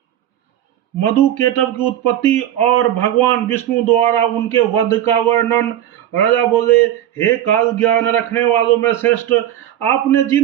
मधु केटव की उत्पत्ति और भगवान विष्णु द्वारा उनके वध का वर्णन। राजा बोले, हे काल ज्ञान रखने वालों में श्रेष्ठ, आपने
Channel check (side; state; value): left; quieter; 11.8 dB